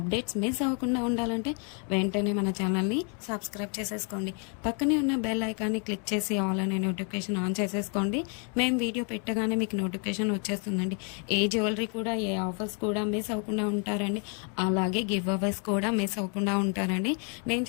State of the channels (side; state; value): right; quieter; 39.5 dB